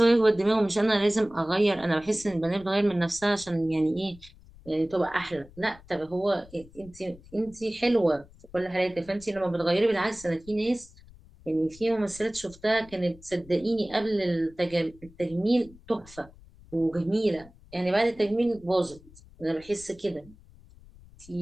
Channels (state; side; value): noise; left; rumble, 23 dB below the sound